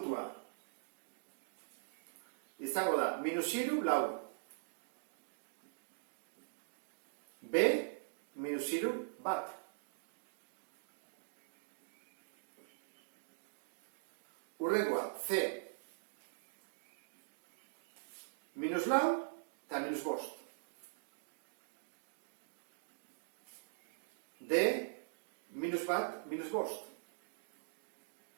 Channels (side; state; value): left; silent; digital silence